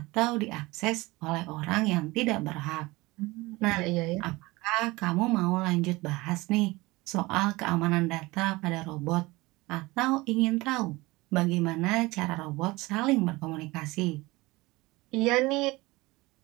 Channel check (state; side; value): quieter; left; 21.6 dB